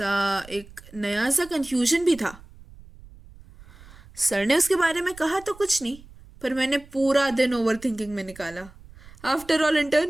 एक नया सा कंफ्यूजन भी था। सर ने उसके बारे में कहा तो कुछ नहीं, पर मैंने पूरा दिन ओवर थिंकिंग में निकाला। आफ्टर ऑल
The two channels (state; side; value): noise; right; rumble, 21 dB below the sound